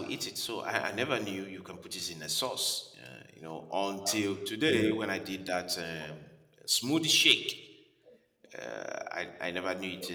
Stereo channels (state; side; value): identical; both; correlation 1.00